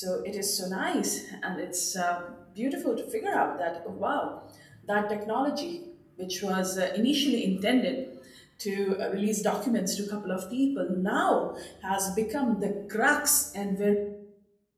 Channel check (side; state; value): both; identical; correlation 1.00